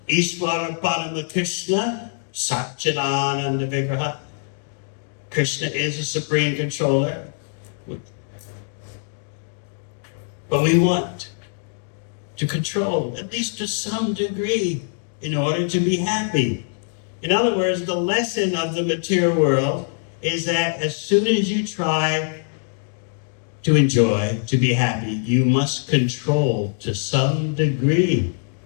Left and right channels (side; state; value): right; silent; digital silence